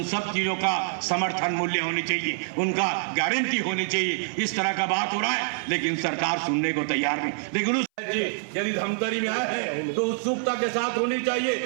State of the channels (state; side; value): silent; left; 60 dB below the other